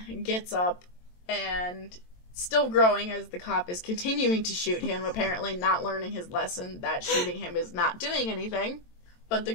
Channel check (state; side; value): late; right; 23 ms